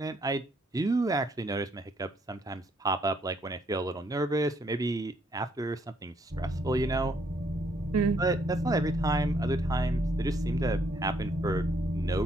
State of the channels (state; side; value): normal; both; correlation 0.70